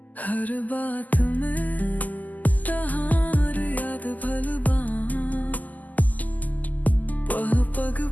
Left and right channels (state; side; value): late; right; 0.080 ms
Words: हर बात में तहार याद भलबा, पह पग